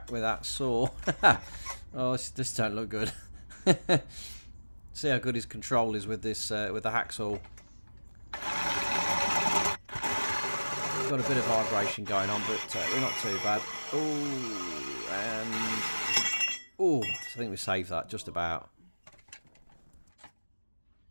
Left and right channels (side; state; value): both; inverted; correlation -1.00